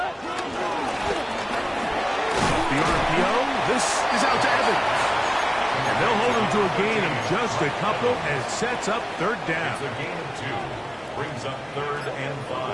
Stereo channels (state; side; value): identical; both; correlation 1.00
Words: RPO, this is out to Evans. And they'll hold him to a gain of just a couple, and it sets up third down. It's a gain of 2. Brings up 3rd and